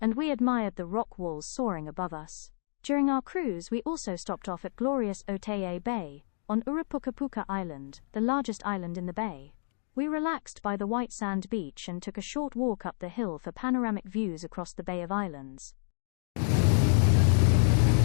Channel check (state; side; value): silent; right; 58 dB below the other